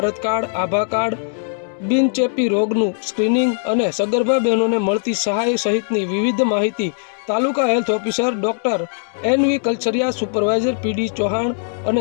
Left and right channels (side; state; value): right; silent; digital silence